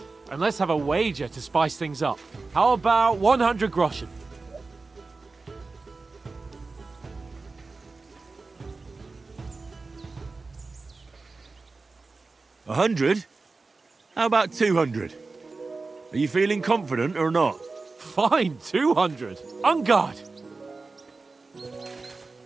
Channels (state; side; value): quieter; left; 3.8 dB